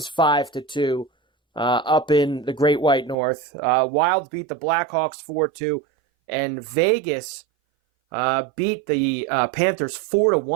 5-2 up in the Great White North. Wild beat the Blackhawks 4-2, and Vegas beat the Panthers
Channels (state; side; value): drops out; left; at 3.2 s